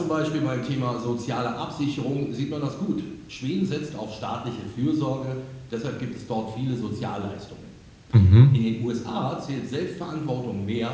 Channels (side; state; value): both; identical; correlation 1.00